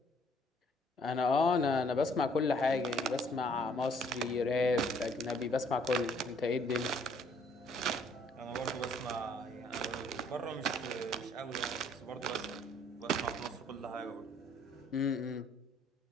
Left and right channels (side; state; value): both; normal; correlation 0.63